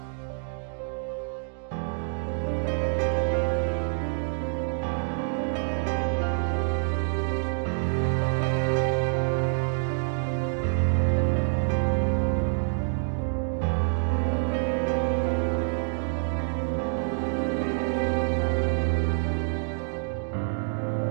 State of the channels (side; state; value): left; silent; 60 dB below the other